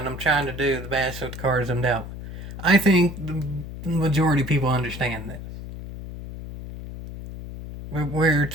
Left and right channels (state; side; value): noise; left; hum, 10 dB below the sound